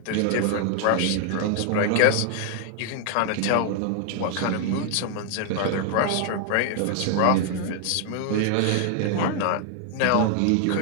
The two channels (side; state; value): both; different; correlation 0.00